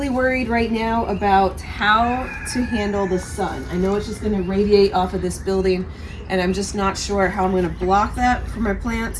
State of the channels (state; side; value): identical; both; correlation 1.00